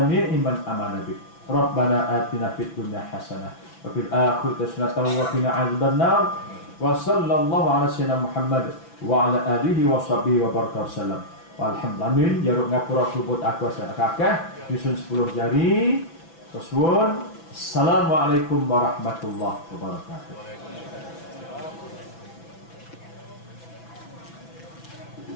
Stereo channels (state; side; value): late; right; 6.0 ms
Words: man amana bik. Rabbana atina fid dunya hasanah wa fil akhirati hasanah wa qina adzabannar. Wa sallallahu ala sayyidina Muhammad wa ala alihi wa sahbihi wa baraka wasallam. Alhamdulillah, jaruk ngapura kubut aku asal kakak nyusun 10 jari. Tersuwun. Assalamualaikum warahmatullahi wabarakatuh.